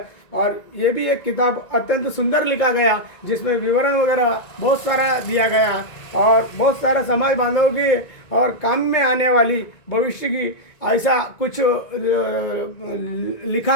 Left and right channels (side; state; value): right; late; 1.9 ms